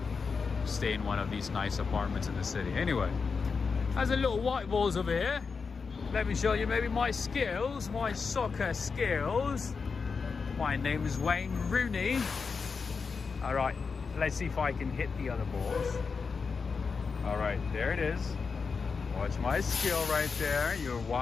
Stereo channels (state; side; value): quieter; right; 5.1 dB